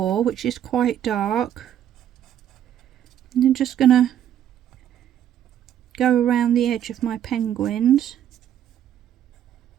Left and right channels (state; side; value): quieter; left; 10.4 dB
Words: which is quite dark. And I'm just going to go around the edge of my penguins.